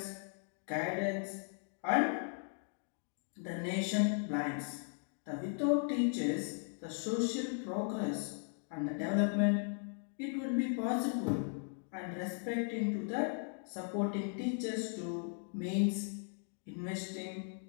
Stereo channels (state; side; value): silent; right; 53 dB below the other